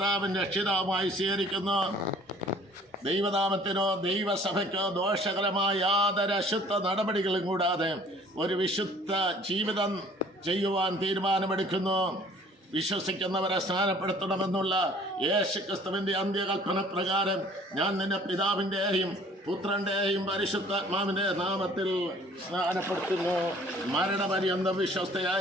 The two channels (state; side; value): normal; both; correlation 0.53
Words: രക്ഷിതാവുമായി സ്വീകരിക്കുന്നു. ദൈവനാമത്തിനോ ദൈവസഭയ്ക്കോ ദോഷകരമായ യാതൊരു അശുദ്ധ നടപടികളും കൂടാതെ ഒരു വിശുദ്ധ ജീവിതം ചെയ്യുവാൻ തീരുമാനമെടുക്കുന്നു. വിശ്വസിക്കുന്നവരെ സ്നാനപ്പെടുത്തണമെന്നുള്ള യേശു ക്രിസ്തുവിന്റെ അന്ത്യകൽപ്പന പ്രകാരം ഞാൻ നിന്റെ പിതാവിൻ്റെയും പുത്രന്റെയും പരിശുദ്ധാത്മാവിന്റെ നാമത്തിൽ സ്നാനപ്പെടുത്തുന്നു. മരണപര്യന്തം